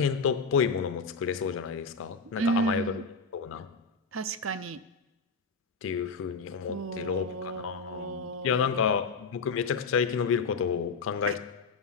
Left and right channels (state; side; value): quieter; right; 4.4 dB